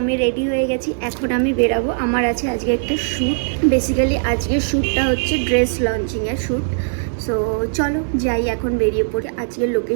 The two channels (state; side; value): silent; left; 66 dB below the other